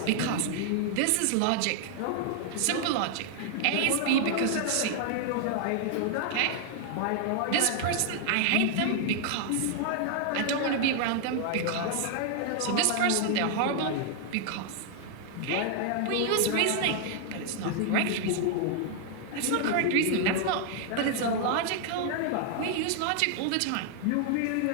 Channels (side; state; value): both; different; correlation 0.00